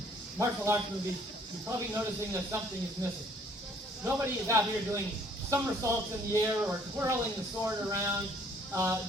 martial arts movies, you're probably noticing that something is missing. Nobody is out here doing somersaults in the air or twirling the sword around,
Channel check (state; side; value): normal; both; correlation 0.60